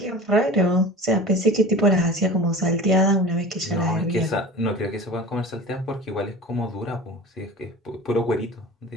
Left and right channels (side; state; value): both; normal; correlation 0.37